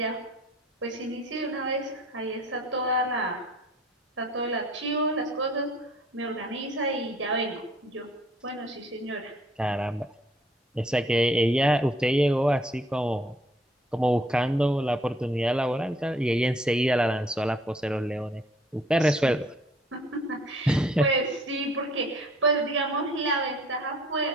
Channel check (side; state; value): both; normal; correlation 0.59